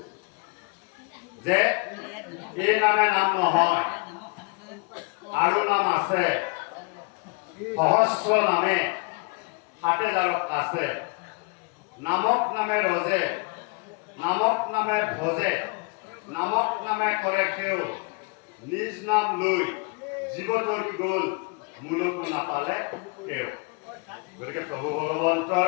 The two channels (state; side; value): quieter; right; 31.6 dB